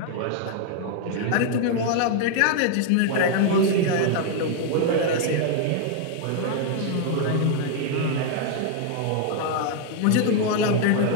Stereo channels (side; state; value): both; different; correlation 0.00